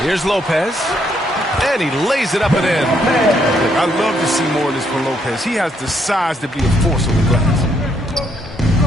Here's Lopez. And he lays it up and in. I love to see more of this from Lopez. He has the size to be a force on the glass.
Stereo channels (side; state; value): both; normal; correlation 0.73